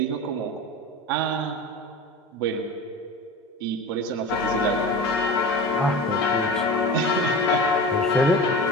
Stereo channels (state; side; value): normal; both; correlation 0.31